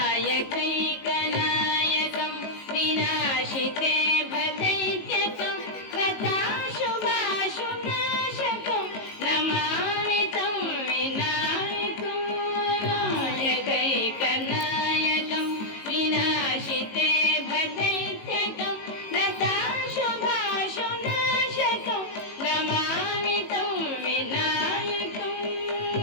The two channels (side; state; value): right; late; 18 ms